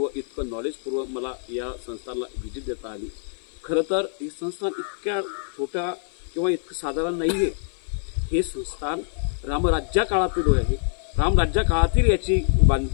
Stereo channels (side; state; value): right; silent; 55 dB below the other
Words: इतकं नॉलेजपूर्व मला या संस्थानला व्हिजिट देता आली। खरं तर हे संस्थान इतक्या छोट्या किंवा इतकं साधारण नाही आहे। हे संस्थान रामराज्या काळातील आहे। रामराज्या काळातील याची